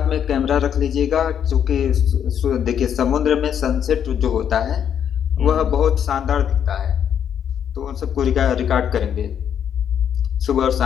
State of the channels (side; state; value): right; quieter; 8.8 dB